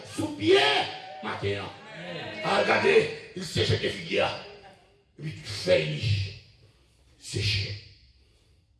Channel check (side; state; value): both; identical; correlation 1.00